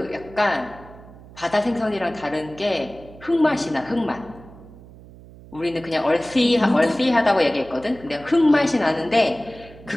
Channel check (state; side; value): noise; right; hum, 20 dB below the sound